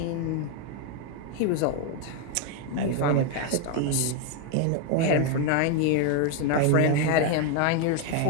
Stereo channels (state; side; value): different; both; correlation 0.01